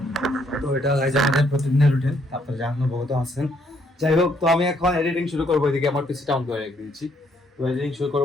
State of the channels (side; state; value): both; normal; correlation 0.70